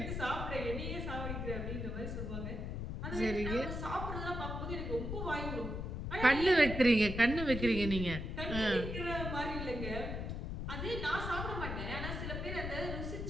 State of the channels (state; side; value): noise; left; rumble, 4 dB below the sound